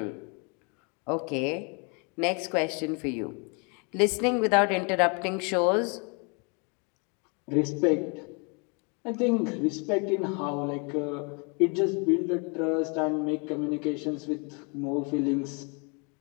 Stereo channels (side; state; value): right; quieter; 33.9 dB